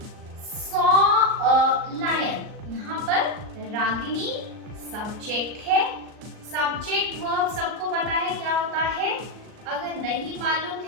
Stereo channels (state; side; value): late; left; 38 ms